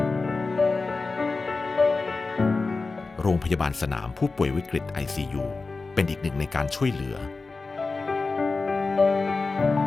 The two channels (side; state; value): right; quieter; 3.9 dB